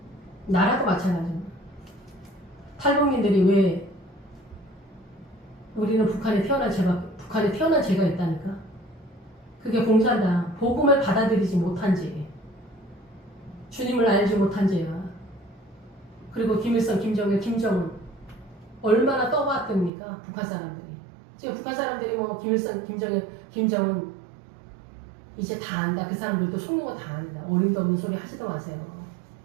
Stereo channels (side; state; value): left; drops out; at 19.9 s